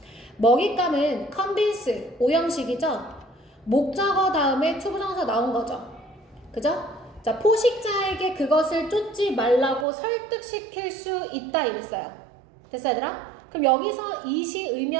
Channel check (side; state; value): left; drops out; at 9.9 s